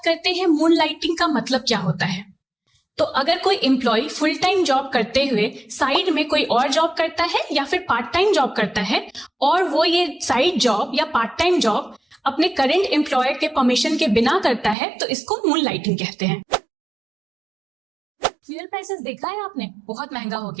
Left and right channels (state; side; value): drops out; left; at 14.8 s